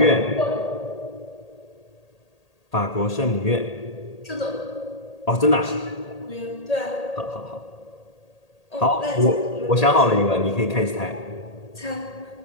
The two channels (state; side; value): late; right; 1.8 ms